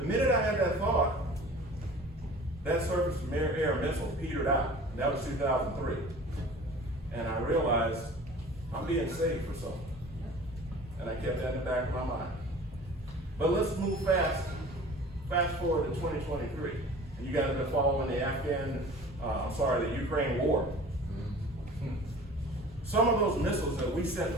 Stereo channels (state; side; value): normal; both; correlation 0.43